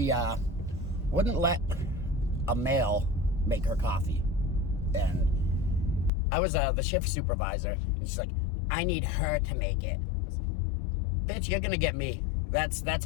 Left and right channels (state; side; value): drops out; right; at 6.1 s